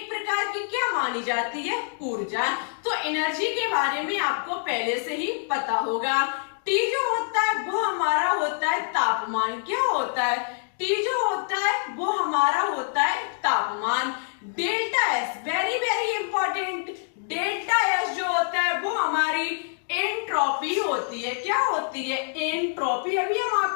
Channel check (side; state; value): right; silent; digital silence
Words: प्रकार की क्या मानी जाती है? ऊर्जा। तो एनर्जी के बारे में आपको पहले से ही पता होगा। टी जो होता है वो हमारा होता है तापमान। क्या होता है? टी जो होता है वो हमारा होता है तापमान। Delta S very very important, delta S जो होता है वो हमारी एंट्रोपी होती है। क्या होती है? एंट्रोपी। अभी हम